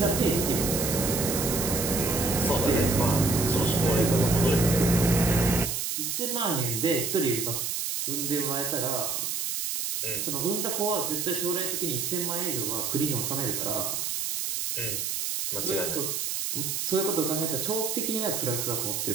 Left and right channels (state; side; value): noise; right; hiss, 2 dB below the sound